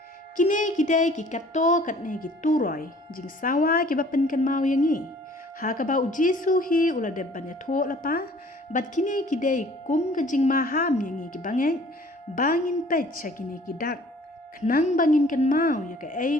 Kine kidai ki kato katne ki turoy jing sawa ki ba pen kan mau yangi. Hakaba ujisu hi ula de banya tho lapa bat kini kidai kum kejing maham yangi ki bangin pet sakini kidak kenang bangin kan mau ya ka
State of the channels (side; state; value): both; normal; correlation 0.53